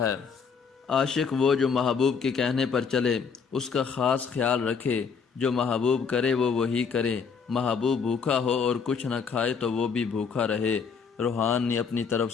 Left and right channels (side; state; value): right; quieter; 5.9 dB